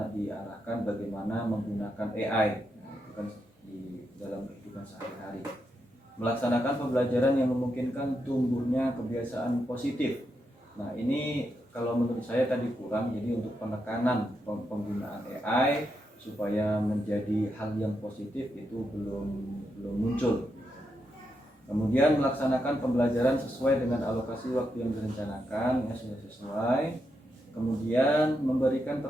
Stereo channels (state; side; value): normal; both; correlation 0.83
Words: diarahkan bagaimana menggunakan AI itu kan di dalam kehidupan sehari-hari. Melaksanakan pembelajaran yang memungkinkan tumbuhnya kebiasaan positif. Nah, ini kalau menurut saya tadi kurang. Jadi untuk penekanan penggunaan AI supaya menjadi hal yang positif itu belum muncul. Kemudian melaksanakan pembelajaran sesuai dengan alokasi waktu yang direncanakan, ya sudah sesuai. Kemudian memberikan